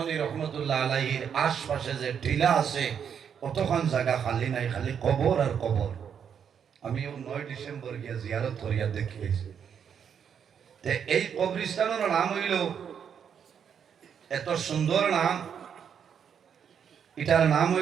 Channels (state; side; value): quieter; left; 7.7 dB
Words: রহমতুল্লাহ আলাইহির আশপাশে যে টিলা আছে, কতক্ষণ জায়গা খালি নাই, খালি কবর আর কবর। আমি 9 ডিসেম্বর গিয়া জিয়ারত করিয়া দেখিয়েছি। এই কবরস্থানের নাম হইল, এত সুন্দর নাম, এটার নাম